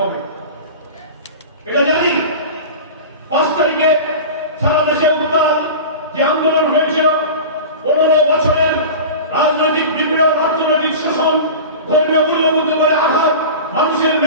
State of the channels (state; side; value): inverted; both; correlation -0.32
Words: এটা জানি। 5 তারিখে সারা দেশে উত্তাল যে আন্দোলন হয়েছিল, 15 বছরের রাজনৈতিক বিপ্লব, অর্থনৈতিক শোষণ, ধর্মীয় মূল্যবোধের আঘাত, মানুষের